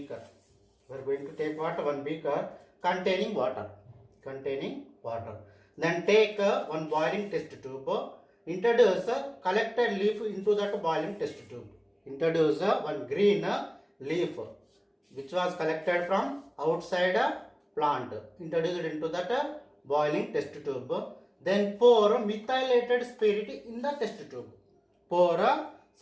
Containing water. Then take one boiling test tube. Introduce collected leaf into that boiling test tube. Introduce one green leaf which was collected from outside plant. Introduce it into that boiling test tube. Then pour methylated spirit in the test tube.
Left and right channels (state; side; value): identical; both; correlation 1.00